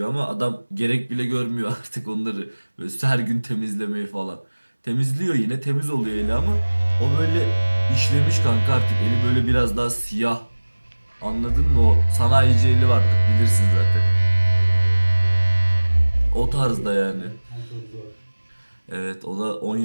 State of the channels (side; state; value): both; inverted; correlation -1.00